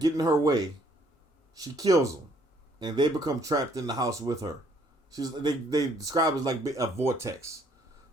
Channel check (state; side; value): normal; both; correlation 0.64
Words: in her way, she kills them, and they become trapped in the house with her. They describe it as like a vortex,